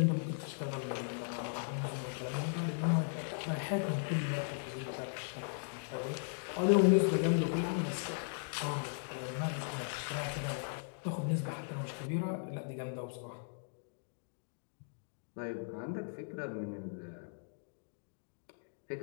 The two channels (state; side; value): silent; right; digital silence